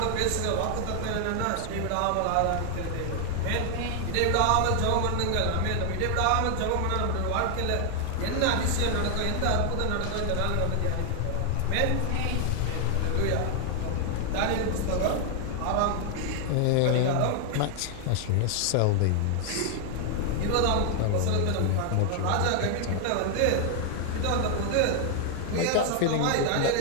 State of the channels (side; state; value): both; different; correlation 0.00